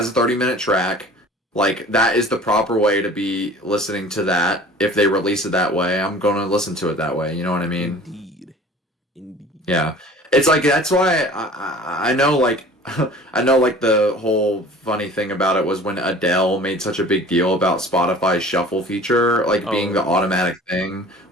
a 30-minute track. Like that is the proper way to be listening to that. If they release it that way, I'm gonna listen to it that way. You know what I mean? Indeed. Indeed. Yeah, it's like that's why I know like I know like the whole funny thing about it was when Adele made such a big deal about Spotify's shuffle feature like being Oh the yeah. automatic thing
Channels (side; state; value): both; normal; correlation 0.45